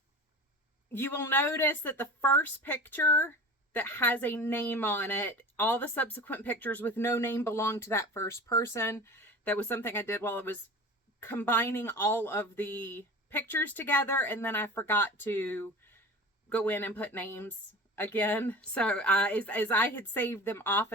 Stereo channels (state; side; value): normal; both; correlation 0.36